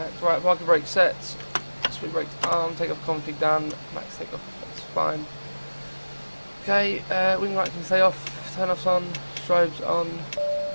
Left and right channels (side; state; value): both; inverted; correlation -1.00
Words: right, parking brake set, speed brake arm, take off config done, max take off, that's fine. Okay, wing light can stay off, turn offs on, strobes on.